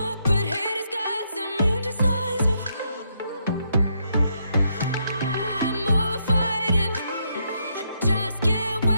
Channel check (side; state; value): both; inverted; correlation -0.77